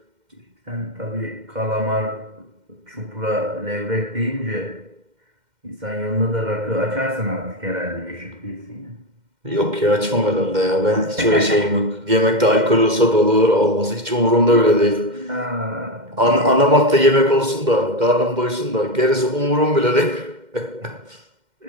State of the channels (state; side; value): late; left; 2.1 ms